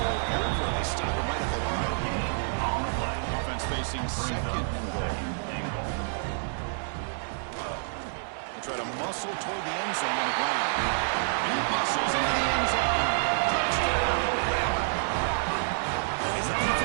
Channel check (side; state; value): left; silent; digital silence